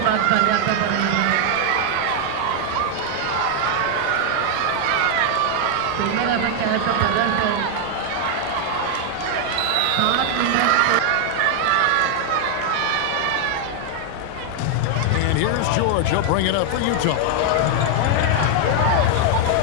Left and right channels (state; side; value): different; both; correlation 0.00